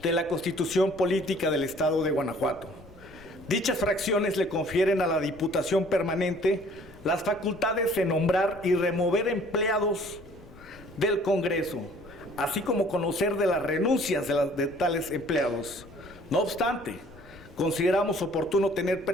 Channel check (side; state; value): left; noise; rumble, 22 dB below the sound